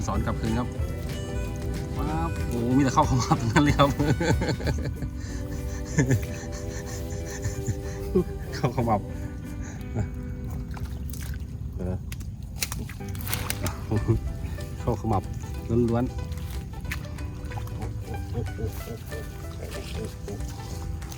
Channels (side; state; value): both; identical; correlation 1.00